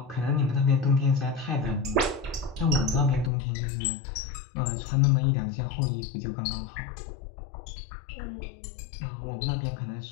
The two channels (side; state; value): right; drops out; at 3.3 s